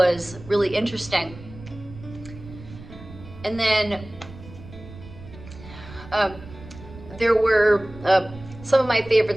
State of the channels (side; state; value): right; noise; rumble, 17 dB below the sound